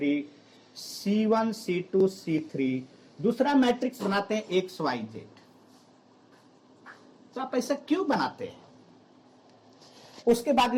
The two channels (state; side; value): identical; both; correlation 1.00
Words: C1 C2 C3, दूसरा मैट्रिक्स बनाते हैं XYZ। तो आप ऐसा क्यों बनाते हैं? उसके बाद